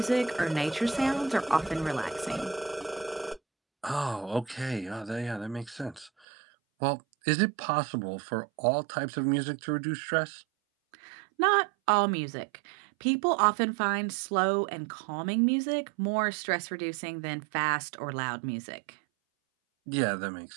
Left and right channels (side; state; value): left; drops out; at 6.1 s